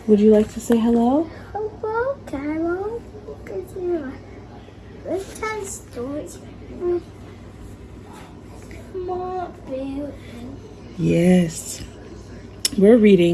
Would you like to say hello? Hello, Cairo. Bedtime stories. Small bear. Yes. We're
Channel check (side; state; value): both; identical; correlation 1.00